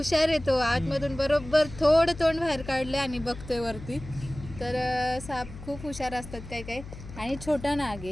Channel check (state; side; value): noise; left; hum, 14 dB below the sound